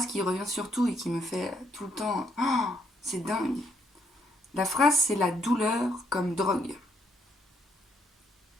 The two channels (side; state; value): both; normal; correlation 0.72